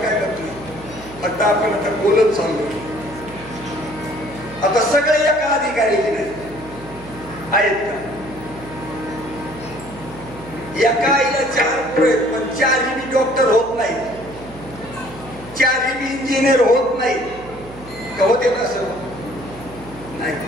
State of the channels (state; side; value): noise; right; hum, 18 dB below the sound